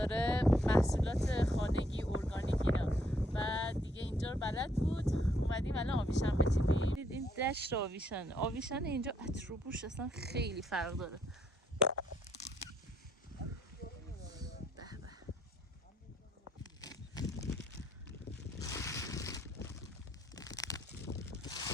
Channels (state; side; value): normal; both; correlation 0.70